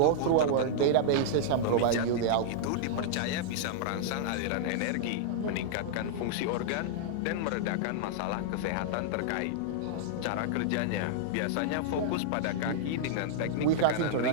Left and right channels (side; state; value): both; different; correlation -0.01